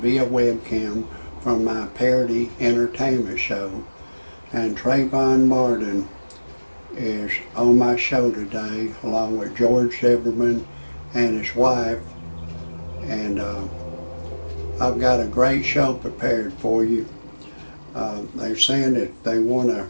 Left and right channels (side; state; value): both; inverted; correlation -1.00